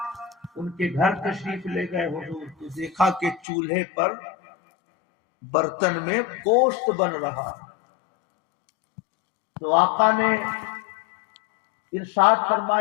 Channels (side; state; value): right; drops out; at 3.4 s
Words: ان کے گھر تشریف لے گئے حضور، تو دیکھا کہ چولہے پر برتن میں گوشت بن رہا۔ تو آقا نے ارشاد